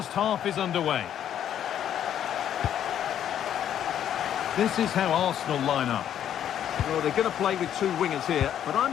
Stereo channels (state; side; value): quieter; right; 10.2 dB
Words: half is underway. This is how Arsenal line up. Well, they're going to play with two wingers here, but